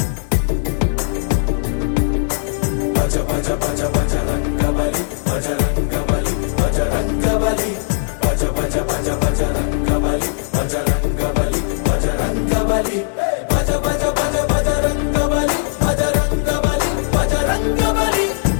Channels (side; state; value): right; silent; 67 dB below the other